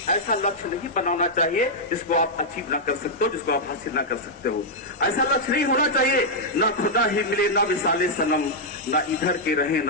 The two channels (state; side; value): normal; both; correlation -0.06